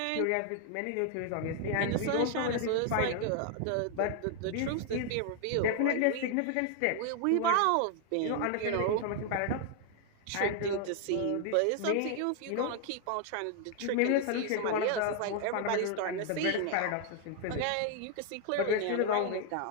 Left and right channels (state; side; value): different; both; correlation 0.00